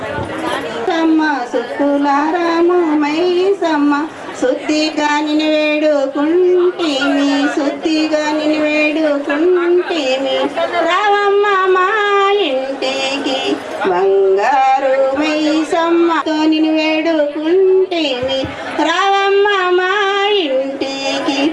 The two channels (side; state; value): both; identical; correlation 1.00